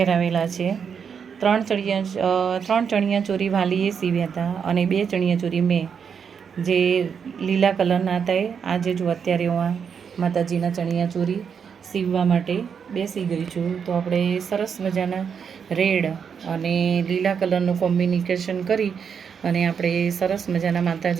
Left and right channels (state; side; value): quieter; left; 6.8 dB